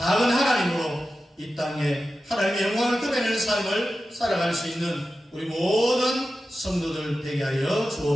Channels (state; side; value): normal; both; correlation 0.93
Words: 하나님으로 이 땅에 하나님의 영광을 드러내는 삶을 살아갈 수 있는 우리 모든 성도들 되게 하여